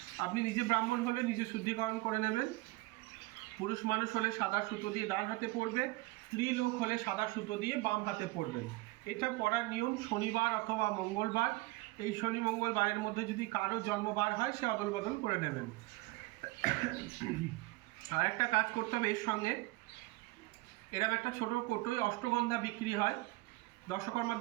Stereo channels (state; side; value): quieter; left; 21.2 dB